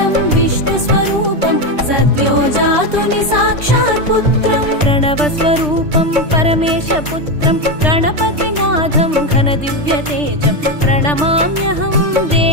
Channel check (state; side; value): late; left; 3.3 ms